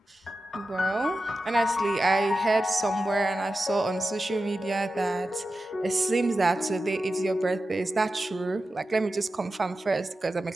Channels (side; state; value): both; normal; correlation 0.92